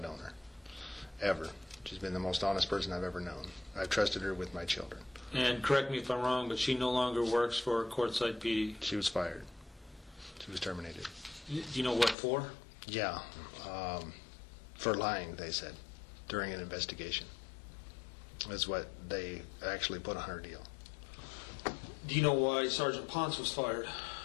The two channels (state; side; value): drops out; right; at 12.2 s